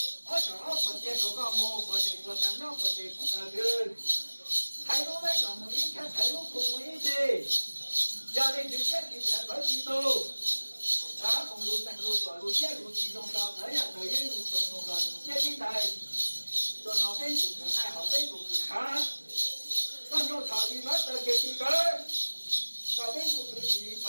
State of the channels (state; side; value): inverted; both; correlation -1.00